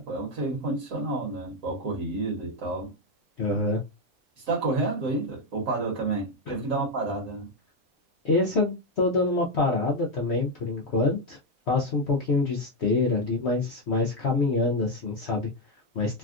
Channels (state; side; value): normal; both; correlation 0.05